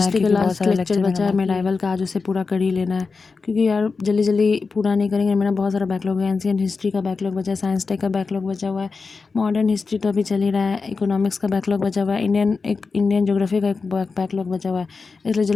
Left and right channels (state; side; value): quieter; right; 4.5 dB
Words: का लास्ट लेक्चर बचा है मेडाइवल का, आज उसे पूरा कर ही लेना है। क्योंकि यार जल्दी जल्दी पूरा नहीं करेंगे, मेरा बहुत सारा बैकलॉग है। एंशिएंट हिस्ट्री का बैकलॉग बचा है, साइंस टेक का बैकलॉग बचा हुआ है, मॉडर्न हिस्ट्री तो अभी चल ही रहा है, इकोनॉमिक्स का बैकलॉग बचा हुआ है, इंडियन ज्योग्राफी का एक बैकलॉग बचा हुआ है। इसलिए